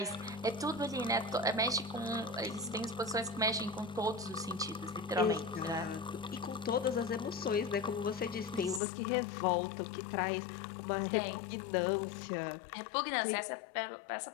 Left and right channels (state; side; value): drops out; right; at 8.8 s